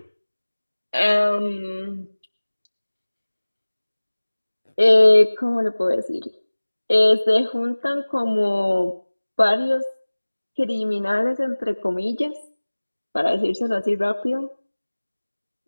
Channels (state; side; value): inverted; both; correlation -1.00